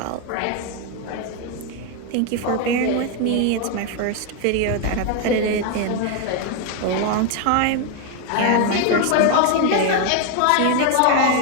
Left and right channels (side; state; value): both; different; correlation 0.01